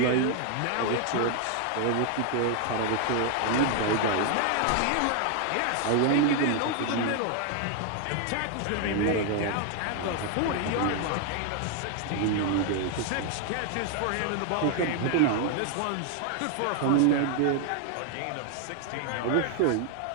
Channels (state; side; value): different; both; correlation 0.00